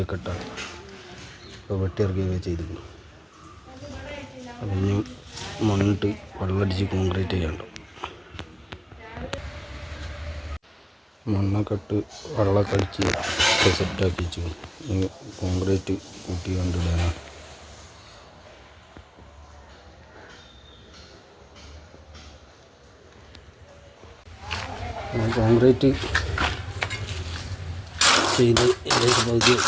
ഇട്ടാൽ ഇപ്പോൾ വെട്ടിയിറക്കിയൊക്കെ ചെയ്തിരിക്കുന്നു. അതിന് മണ്ണിട്ട് വെള്ളമടിച്ച് കോൺക്രീറ്റ് ചെയ്യാനുണ്ടാവും. മണ്ണൊക്കെ ഇട്ട് വെള്ളമൊക്കെ അടിച്ച് സെറ്റാക്കി വെച്ചു. കോൺക്രീറ്റ് കൂട്ടി കണ്ടിടാനാണ്. കോൺക്രീറ്റ് ചെയ്ത് ഇതിലേക്ക് പകുതി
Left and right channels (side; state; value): both; identical; correlation 1.00